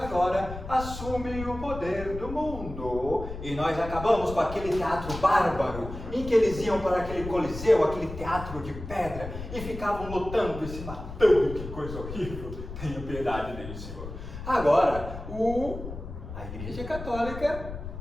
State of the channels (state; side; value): noise; left; rumble, 10 dB below the sound